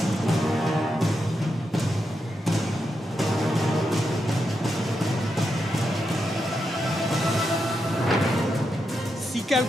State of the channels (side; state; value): both; normal; correlation 0.85